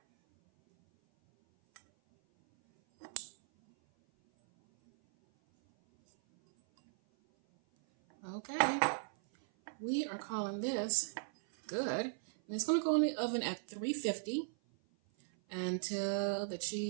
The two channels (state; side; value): silent; left; 53 dB below the other